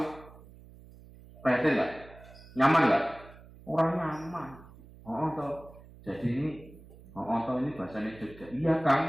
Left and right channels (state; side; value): noise; right; hum, 21 dB below the sound